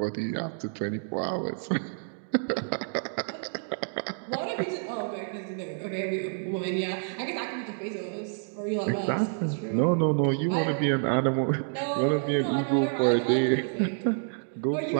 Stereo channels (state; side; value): silent; left; digital silence